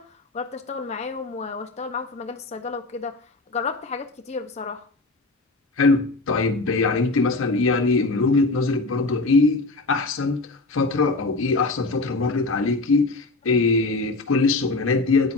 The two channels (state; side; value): quieter; right; 3.3 dB